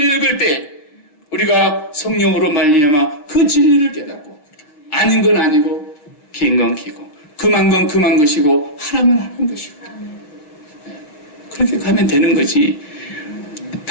읽을 때 우리가 성령으로 말미암아 그 진리를 깨닫고 아닌 건 아니고 긴 건 기고 금한 건 금한 것이고 하라면 하는 것이고 그렇게 가면 되는 거지.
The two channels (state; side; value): late; right; 6.7 ms